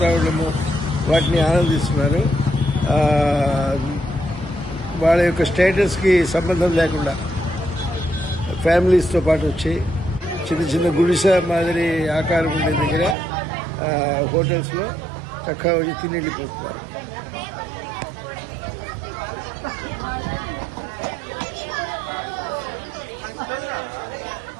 వాటిని ఆనందిస్తున్నారు. వాళ్ళ యొక్క స్టేటస్కి సంబంధం లేకుండా ఫ్యామిలీస్తో పాటు వచ్చి చిన్న చిన్న గుడిసె మాదిరి ఆకారం ఉండే దగ్గర హోటల్స్లో చక్కగా వచ్చి తిని వెళ్ళిపోతున్నారు.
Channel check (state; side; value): drops out; left; at 13.2 s